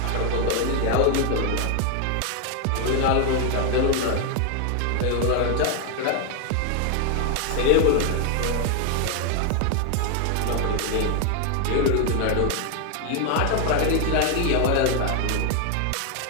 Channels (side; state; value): both; different; correlation 0.01